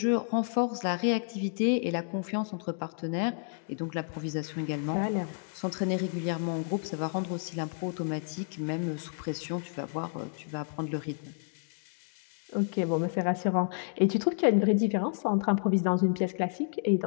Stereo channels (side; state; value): right; silent; digital silence